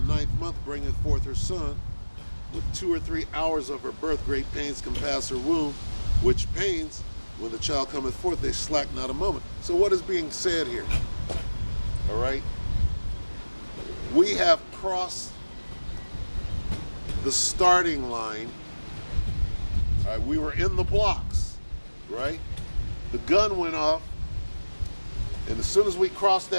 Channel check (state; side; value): inverted; both; correlation -1.00